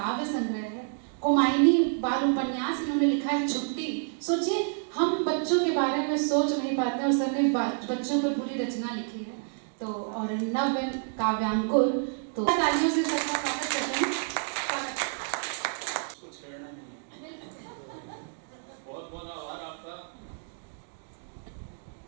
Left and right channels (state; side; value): silent; left; digital silence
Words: संग्रह है, कुमायनी बाल उपन्यास इन्होंने लिखा है, छुट्टी। सोचिए हम बच्चों के बारे में सोच नहीं पाते और सर ने बच्चों पर पूरी रचना लिखी है। तो और नव काव्यांकुर, तो तालियों से सबका स्वागत करते हैं। कुछ कहना नहीं है। बहुत बहुत आभार आपका।